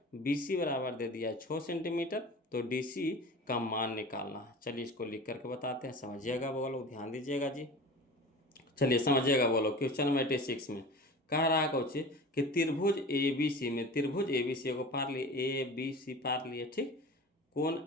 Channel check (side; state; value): both; normal; correlation 0.36